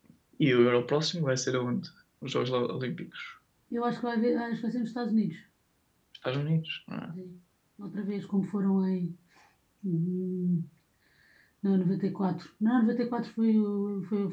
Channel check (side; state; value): both; identical; correlation 1.00